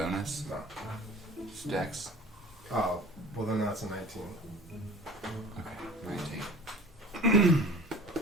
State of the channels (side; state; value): both; normal; correlation 0.42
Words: No. Just dex? Oh, well then that's a 19. Okay, 19.